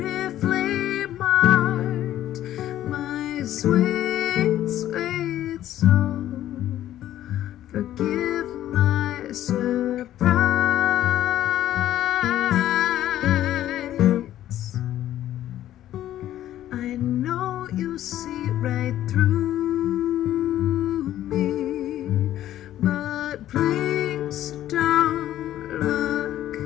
marked, my sweet, sweet soul. Forgive my surprise. I know you see right through me, but please don't look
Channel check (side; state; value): right; quieter; 12.7 dB